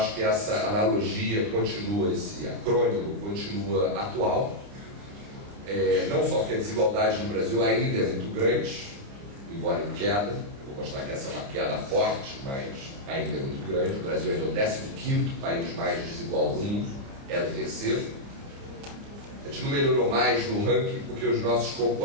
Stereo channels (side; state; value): left; late; 30 ms